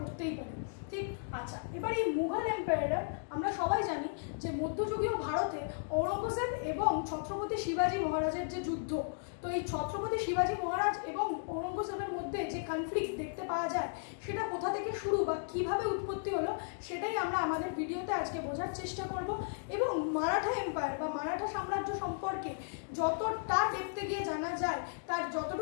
পারি। ঠিক, আচ্ছা, এবার এই মুঘল এম্পায়ার আমরা সবাই জানি যে মধ্যযুগীয় ভারতে ঔরঙ্গজেব এবং ছত্রপতি শিবাজী মহারাজের যে যুদ্ধ, তো এই ছত্রপতি শিবাজী মহারাজ এবং ঔরঙ্গজেবের মধ্যে যে কনফ্লিক্ট দেখতে পাওয়া যায়, সেটা কোথা থেকে শুরু বা কিভাবে উৎপত্তি হলো, সেটাই আমরা আমাদের ভিডিওতে আজকে বোঝার চেষ্টা করব। এবং মারাঠা এম্পায়ার বা মারাঠা সাম্রাজ্য সম্পর্কে যতটা ডেপথে গিয়ে জানা যায়, তার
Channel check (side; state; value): right; silent; digital silence